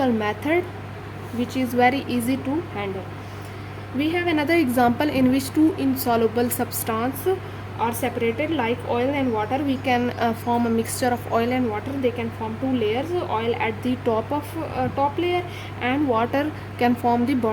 method which is very easy to handle. We have another example in which two insoluble substances are separated, like oil and water. We can form a mixture of oil and water. They can form two layers, oil at the top of top layer and water can form the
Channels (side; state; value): both; identical; correlation 1.00